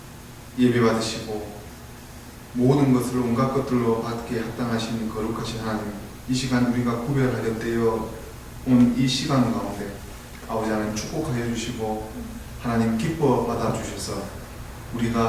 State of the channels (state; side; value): identical; both; correlation 1.00